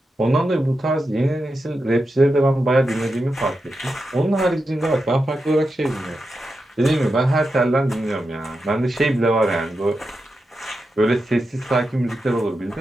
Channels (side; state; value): both; normal; correlation 0.89